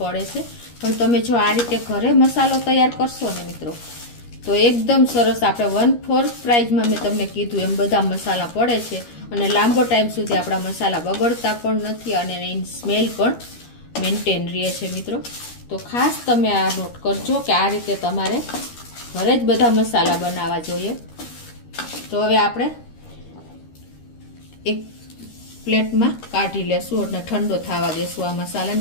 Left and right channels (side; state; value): right; late; 13 ms